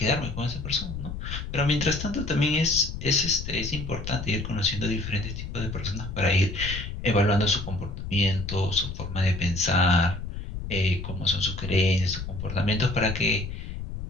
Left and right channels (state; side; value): noise; left; rumble, 7 dB below the sound